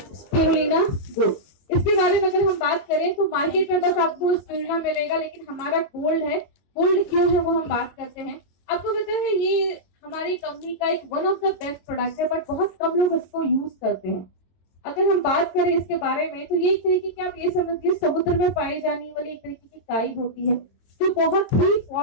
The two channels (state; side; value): late; right; 22 ms